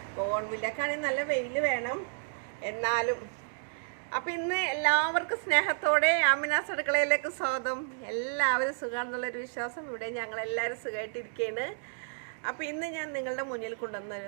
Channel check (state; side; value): silent; left; digital silence